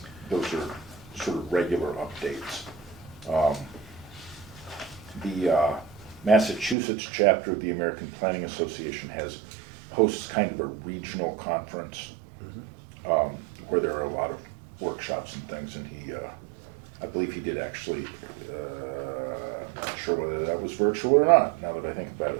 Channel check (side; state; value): left; drops out; at 6.8 s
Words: those are sort of regular updates. The Massachusetts chapter of the American Planning Association hosts kind of a regional conference where there are a lot of workshops and things, and I believe he did actually, I'm not sure whether that was virtual or not, now that I think about